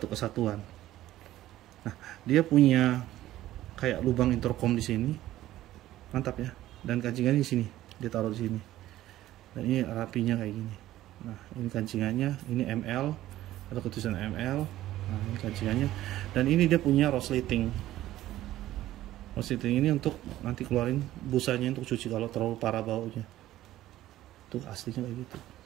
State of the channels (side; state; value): left; quieter; 14.5 dB